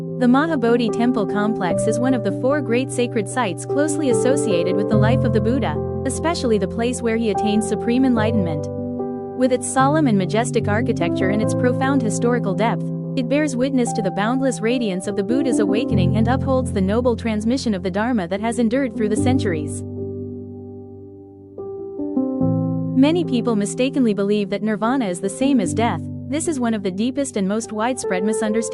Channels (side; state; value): both; identical; correlation 1.00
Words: The Mahabodhi temple complex is one of the 4 great sacred sites closely associated with the life of the Buddha, especially the place where he attained supreme enlightenment. With its solemn and majestic architecture and its profound historical depth, it bears witness to the boundless radiance of the Buddha's awakening and upholds the noble transmission of the Dharma that has endured through the centuries. Many people mistakenly believe that nirvana is the same as death. This is one of the deepest and most widespread